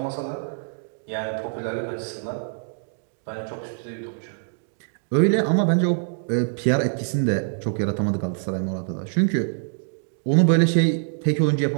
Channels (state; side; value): silent; left; digital silence